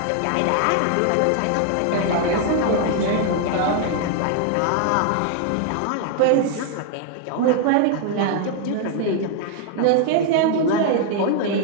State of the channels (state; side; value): different; both; correlation 0.00